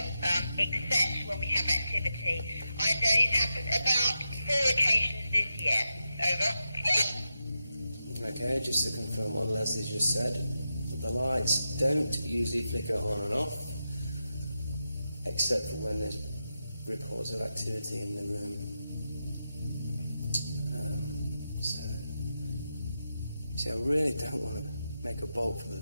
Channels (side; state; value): both; inverted; correlation -0.88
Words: except when we have activity. I know it's happened about 4 occasions this year. Over. Okay, just to confirm what Leslie just said, the lights don't usually flicker on and off, except for when there's reports of activity in the room. See, I really don't want to make a bolt for the